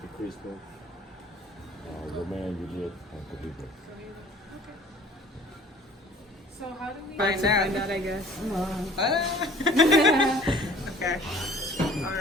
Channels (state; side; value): normal; both; correlation 0.50